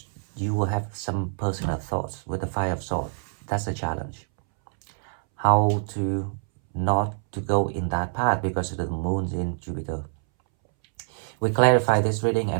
you will have some personal thoughts with the Five of Swords. That's a challenge. how to not to go in that path because the moon's in Jupiter. We clarify this reading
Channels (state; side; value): silent; left; 61 dB below the other